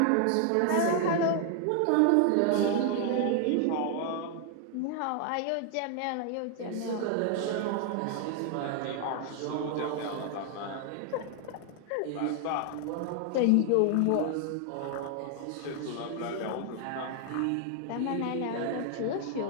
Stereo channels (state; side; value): different; both; correlation 0.00